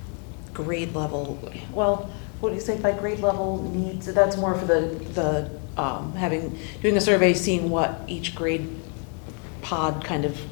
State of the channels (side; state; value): right; quieter; 40.0 dB